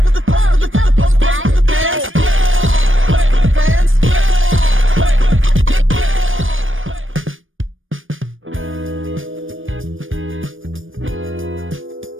the pose with the pose with the bands. Pose with the bands.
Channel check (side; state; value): left; late; 0.58 ms